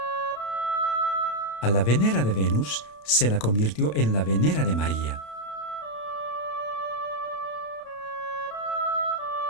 A la Venera de Venus se la convirtió en la Venera de María.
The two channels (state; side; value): late; right; 32 ms